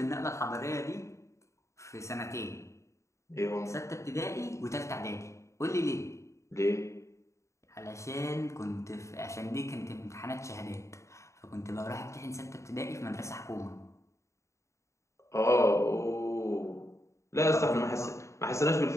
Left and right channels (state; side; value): late; right; 0.14 ms